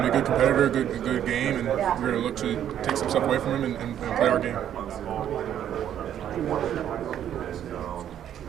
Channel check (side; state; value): left; quieter; 10.3 dB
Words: competitor, a good game, and we're gonna look to take some stuff away from him and play our game.